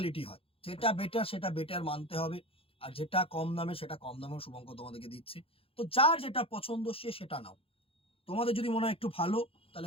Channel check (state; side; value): late; right; 0.27 ms